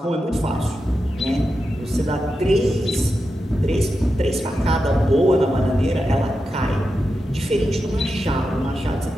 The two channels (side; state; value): both; normal; correlation 0.89